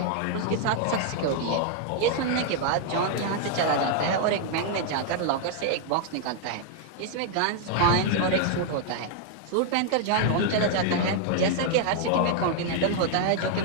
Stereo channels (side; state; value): both; different; correlation 0.00